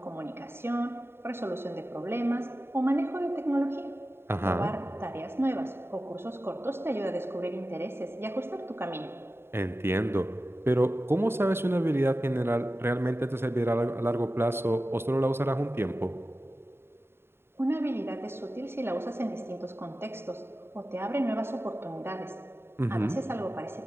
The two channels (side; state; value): left; late; 0.11 ms